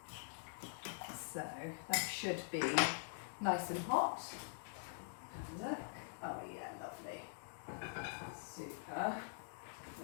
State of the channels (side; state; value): right; silent; digital silence